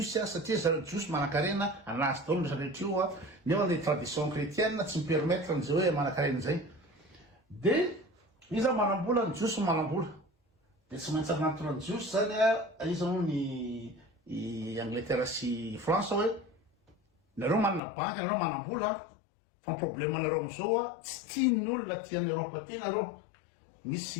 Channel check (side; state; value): right; drops out; at 17.8 s